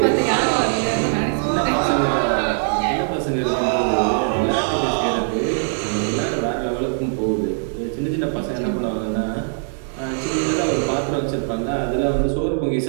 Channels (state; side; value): silent; left; digital silence